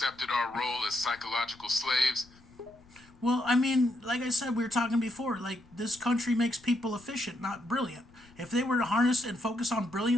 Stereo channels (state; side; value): noise; left; rumble, 26 dB below the sound